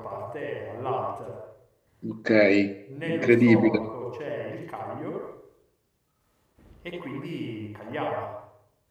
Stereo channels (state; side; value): identical; both; correlation 1.00